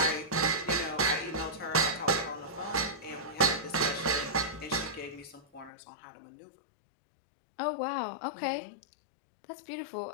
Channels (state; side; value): drops out; right; at 5.7 s